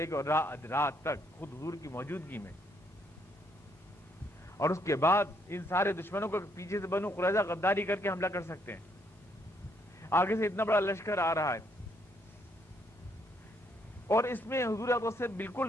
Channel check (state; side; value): normal; both; correlation 0.72